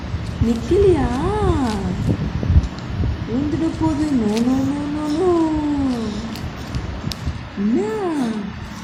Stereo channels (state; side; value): identical; both; correlation 1.00